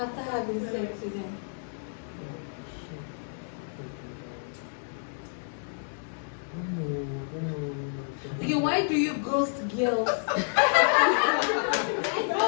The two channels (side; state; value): right; silent; digital silence